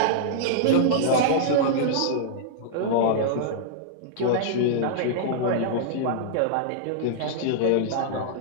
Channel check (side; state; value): both; different; correlation -0.02